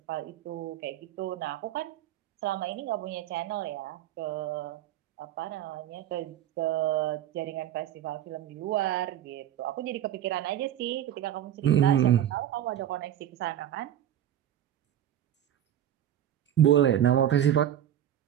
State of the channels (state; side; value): quieter; left; 11.2 dB